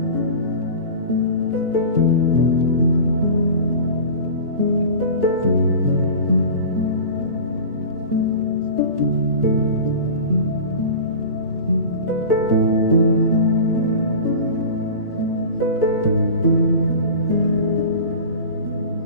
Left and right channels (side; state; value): both; inverted; correlation -0.34